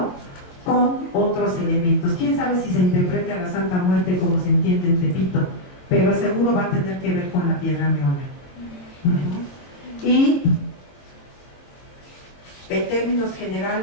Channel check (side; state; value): right; late; 23 ms